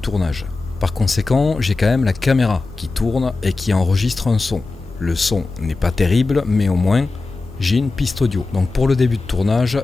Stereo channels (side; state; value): right; quieter; 3.6 dB